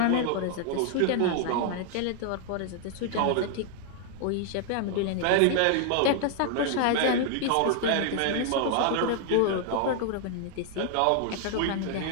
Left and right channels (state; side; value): different; both; correlation 0.00